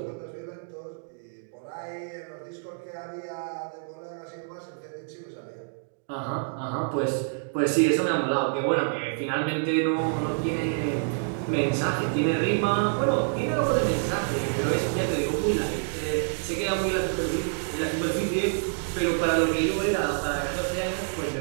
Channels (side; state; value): left; silent; digital silence